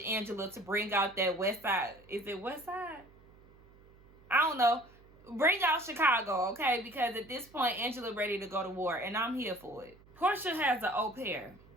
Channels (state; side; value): noise; right; hum, 26 dB below the sound